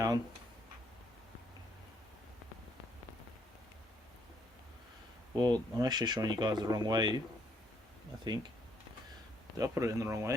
Well, I'm actually showing you guys the wrong way, I think. Did I put it in the wrong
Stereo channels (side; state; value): both; normal; correlation 0.70